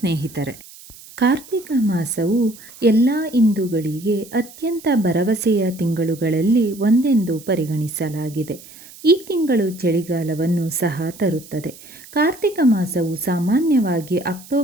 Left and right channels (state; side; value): noise; right; hiss, 20 dB below the sound